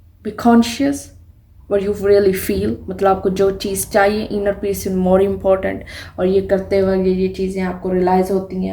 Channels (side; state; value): both; identical; correlation 1.00